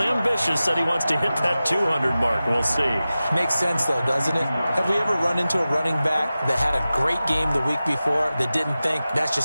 said he wants to hit that 200 mark. We'll see. Makes sense, though, doesn't it? Have we ever run into a running back that had a great game the week before that didn't think that's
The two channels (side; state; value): both; inverted; correlation -0.95